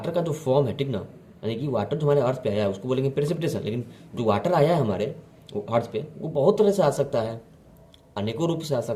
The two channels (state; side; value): identical; both; correlation 1.00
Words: का जो फॉर्म है, ठीक ना, यानी कि वाटर जो हमारे अर्थ पे आया है उसको बोलेंगे प्रेसिपिटेशन। लेकिन जो वाटर आया है हमारे अर्थ पे, वो बहुत तरह से आ सकता है, अनेकों रूप से आ